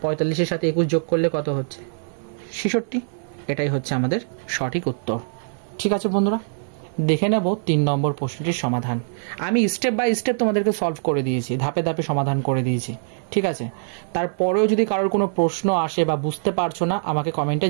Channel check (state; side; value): silent; left; digital silence